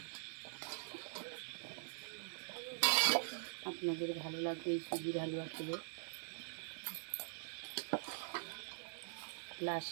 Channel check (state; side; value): silent; left; digital silence